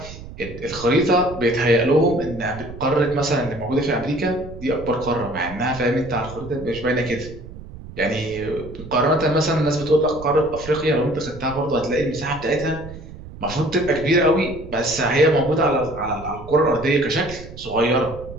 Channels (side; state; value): right; noise; rumble, 14 dB below the sound